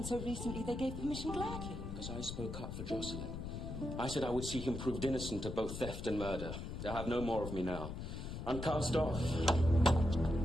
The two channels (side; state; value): left; noise; rumble, 6 dB below the sound